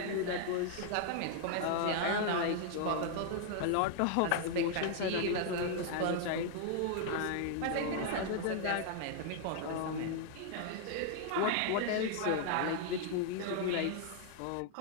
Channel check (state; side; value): different; both; correlation 0.00